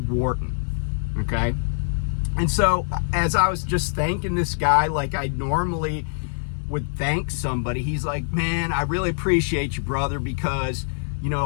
Wharton, okay? And so as I was just thanking this guy like I normally would thank somebody, he's like, man, I really appreciate you, brother, because, you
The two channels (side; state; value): right; silent; digital silence